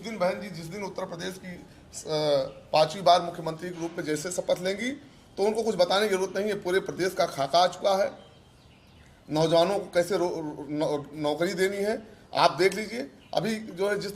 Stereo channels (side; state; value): both; identical; correlation 1.00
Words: बहन जी जिस दिन उत्तर प्रदेश की 5वीं बार मुख्यमंत्री के रूप में जैसे शपथ लेंगी तो उनको कुछ बताने की जरूरत नहीं है। पूरे प्रदेश का खाका आ चुका है, नौजवानों को कैसे नौकरी देनी है। आप देख लीजिए अभी जो है